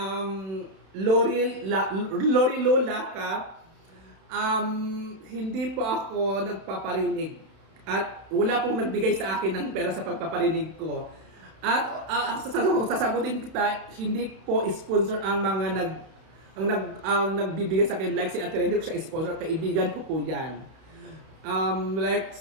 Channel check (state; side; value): late; left; 31 ms